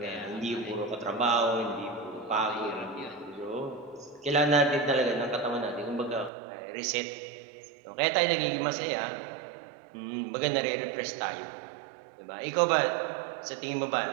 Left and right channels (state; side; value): drops out; left; at 6.3 s